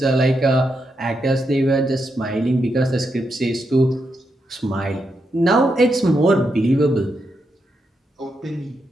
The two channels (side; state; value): both; normal; correlation 0.83